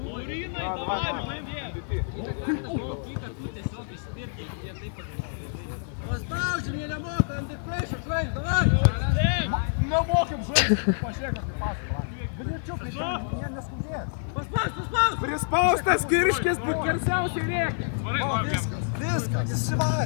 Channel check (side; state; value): right; silent; digital silence